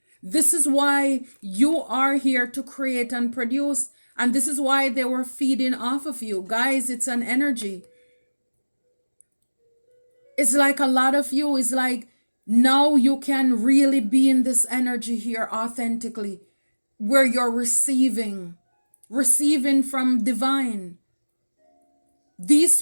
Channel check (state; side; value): inverted; both; correlation -1.00